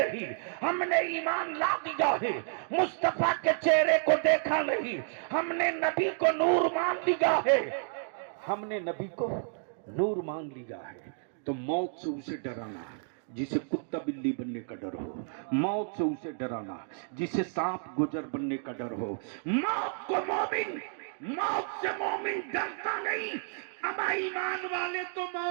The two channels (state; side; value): silent; left; digital silence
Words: हमने ईमान ला दिया है। मुस्तफा के चेहरे को देखा नहीं, हमने नबी को नूर मान लिया है। हमने नबी को नूर मान लिया है। तो मौत से उसे डराना जिसे कुत्ता बिल्ली बनने का डर हो, मौत से उसे डराना जिसे सांप गुजर बनने का डर हो। मौत को मोमिन, मौत से मोमिन डरता नहीं। अमा ईमान वाले तो